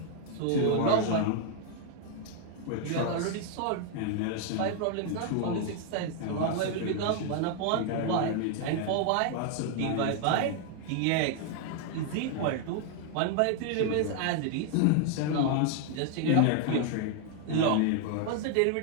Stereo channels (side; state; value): both; different; correlation 0.00